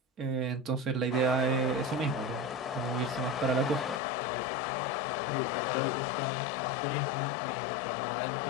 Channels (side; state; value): right; drops out; at 4.0 s